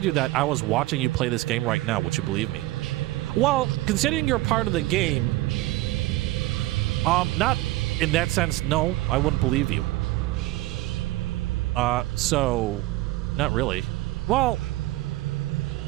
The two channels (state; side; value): quieter; left; 18.0 dB